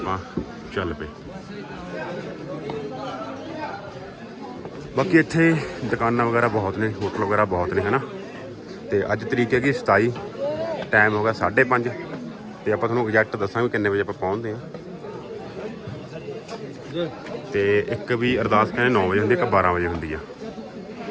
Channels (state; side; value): identical; both; correlation 1.00